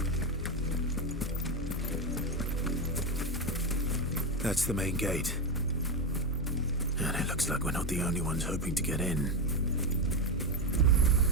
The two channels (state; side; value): normal; both; correlation 0.11